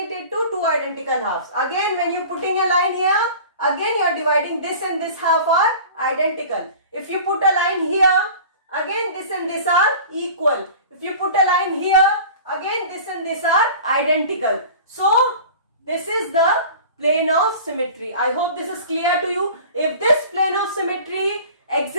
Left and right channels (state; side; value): inverted; both; correlation -0.40